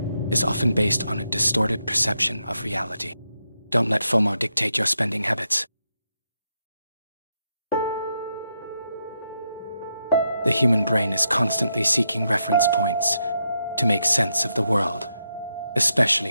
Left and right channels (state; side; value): inverted; both; correlation -0.83